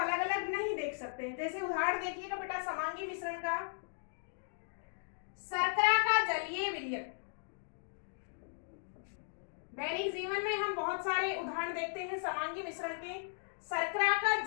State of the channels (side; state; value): right; silent; digital silence